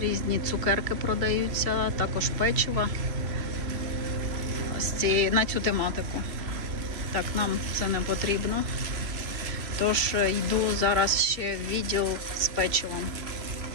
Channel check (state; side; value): late; left; 2.6 ms